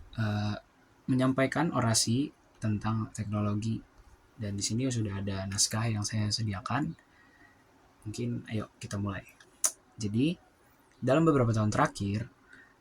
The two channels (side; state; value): both; identical; correlation 1.00